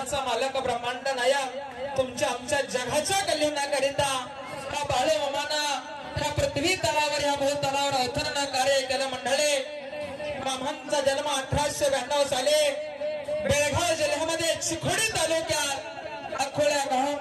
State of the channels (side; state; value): both; identical; correlation 1.00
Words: मालक ब्रह्मांड नायक तुमच्या आमच्या जगाच्या कल्याणाकरिता हा बाळूमामाना ह्या पृथ्वी तलावर, या भूतलावर अवतरण कार्य केलं। मंडळी, मामांचा जन्म 1892 साली बेळगाव जिल्ह्यामध्ये चिखोडी तालुक्यात अकोल्या